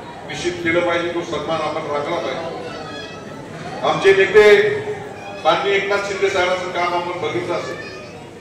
निश्चित केलं पाहिजे. तो सन्मान आपण राखला पाहिजे. आमचे नेते माननीय एकनाथ शिंदे साहेबांचं काम आपण बघितलं असेल.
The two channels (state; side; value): identical; both; correlation 1.00